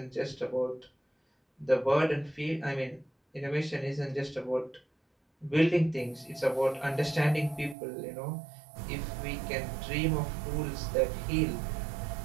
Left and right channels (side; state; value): left; drops out; at 7.8 s